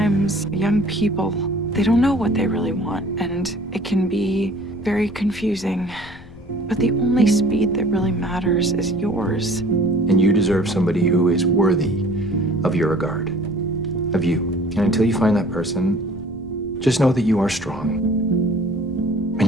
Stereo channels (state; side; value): noise; left; rumble, 21 dB below the sound